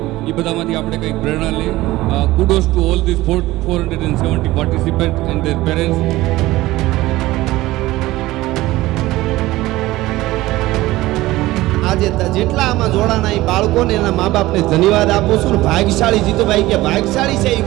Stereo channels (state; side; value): quieter; left; 17.7 dB